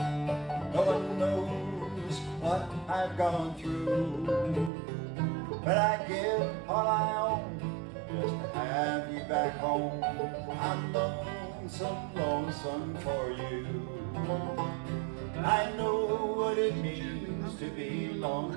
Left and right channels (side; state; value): left; drops out; at 4.7 s